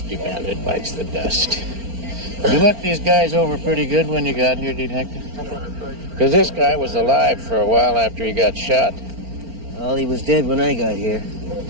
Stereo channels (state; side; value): late; left; 4.4 ms